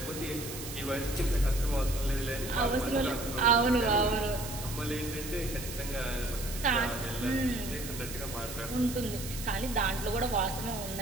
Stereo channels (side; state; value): right; noise; hiss, 10 dB below the sound